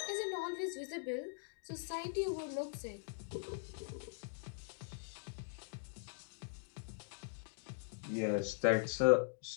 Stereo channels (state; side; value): silent; right; digital silence